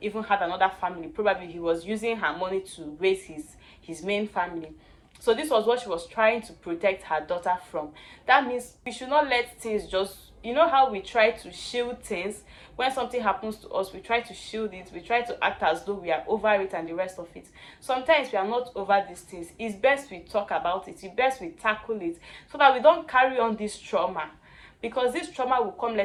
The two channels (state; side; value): identical; both; correlation 1.00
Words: even had another family. Probably he was using her money to raise his main family. So this was what she was trying to protect her daughter from. That means we should not let things just, you know how we try to shield things. When something happens to us, we try to shield it, we try to act as though we are over it and the rest of it. Sometimes we are not over these things. It's best we talk about it, it's best we tackle it, so that we don't carry on this trauma, because this trauma will come